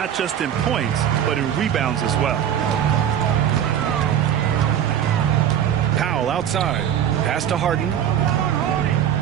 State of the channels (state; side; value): quieter; left; 9.9 dB